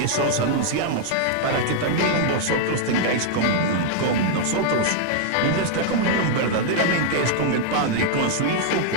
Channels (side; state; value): both; different; correlation 0.00